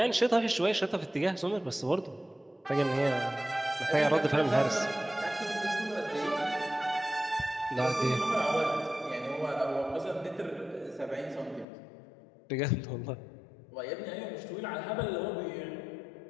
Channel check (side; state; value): right; drops out; at 11.7 s